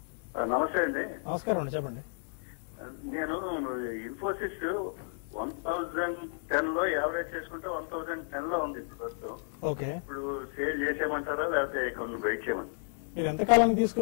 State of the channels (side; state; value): right; silent; digital silence